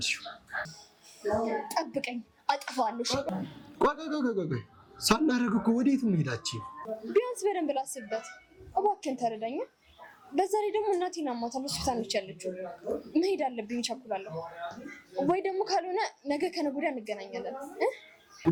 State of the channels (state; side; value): identical; both; correlation 1.00